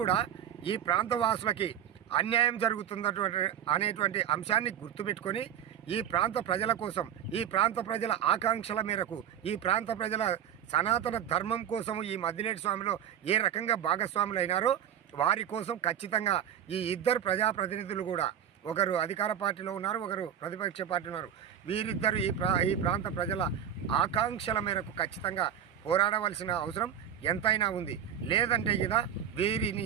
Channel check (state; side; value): quieter; left; 9.4 dB